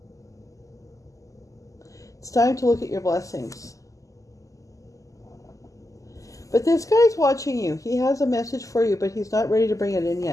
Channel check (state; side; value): late; right; 0.16 ms